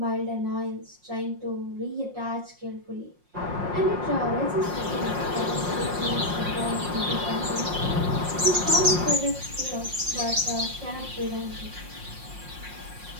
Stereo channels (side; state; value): left; late; 5.6 ms